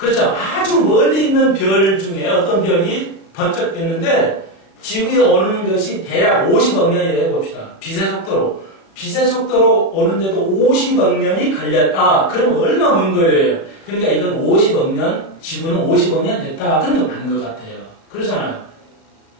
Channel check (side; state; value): right; late; 36 ms